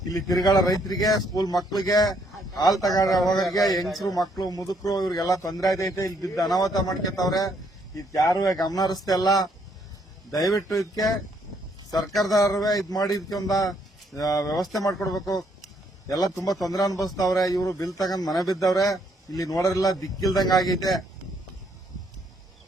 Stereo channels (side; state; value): both; normal; correlation 0.70